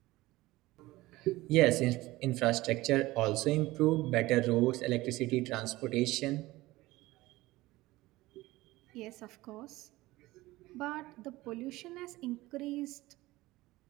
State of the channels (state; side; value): quieter; left; 18.8 dB